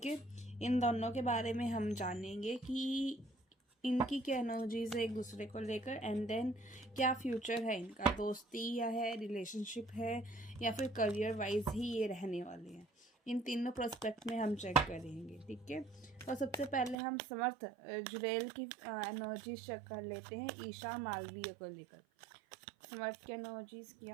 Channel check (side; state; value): left; drops out; at 16.9 s